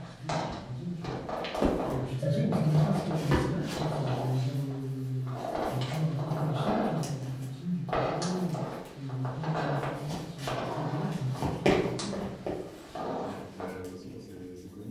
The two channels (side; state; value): both; identical; correlation 1.00